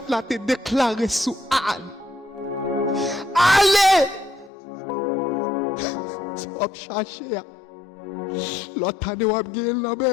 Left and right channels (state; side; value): drops out; right; at 4.5 s